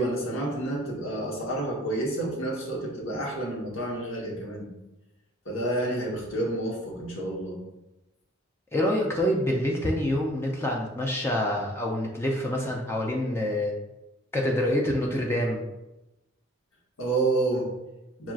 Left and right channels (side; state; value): both; normal; correlation 0.52